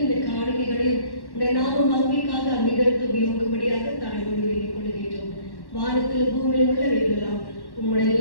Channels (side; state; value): right; late; 1.1 ms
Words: இந்த காணிக்கைகளையும் இந்த நாம மகிமைக்காக அங்கீகரித்து உபயோகப்படியாக தாழ்வோடு வேண்டிக் கொள்கின்றோம். வானத்தில் பூமியில் உள்ளவைகளெல்லாம்